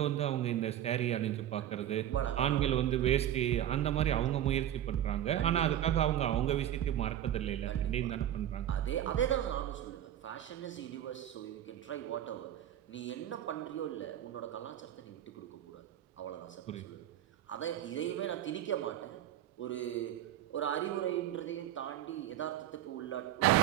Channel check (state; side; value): quieter; left; 11.6 dB